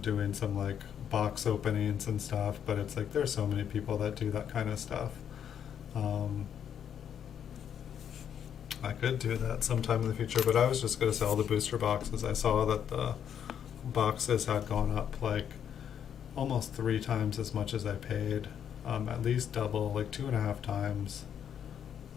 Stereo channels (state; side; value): quieter; right; 8.8 dB